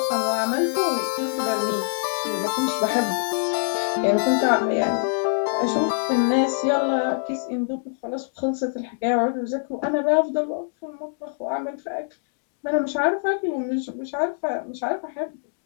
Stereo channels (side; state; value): right; silent; digital silence